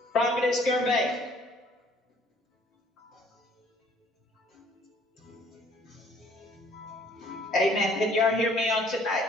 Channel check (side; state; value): both; normal; correlation 0.59